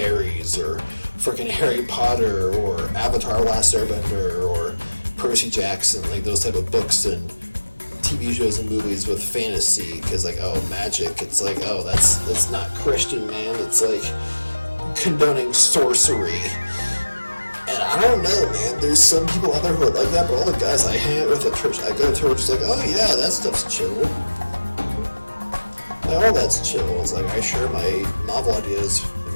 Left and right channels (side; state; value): both; inverted; correlation -1.00